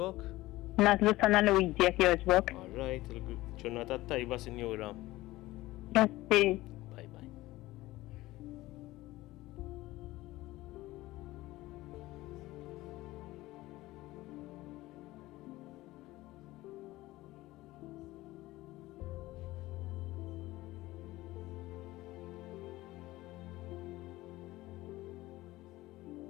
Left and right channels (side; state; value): right; quieter; 18.0 dB